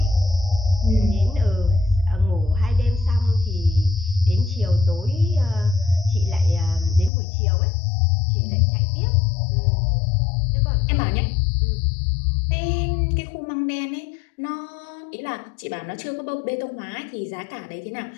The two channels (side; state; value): right; drops out; at 7.1 s